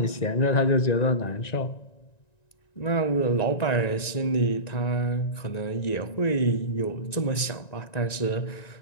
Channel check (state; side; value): late; right; 1.9 ms